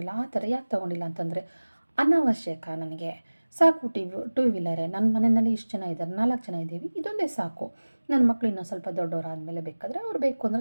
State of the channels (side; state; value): both; inverted; correlation -1.00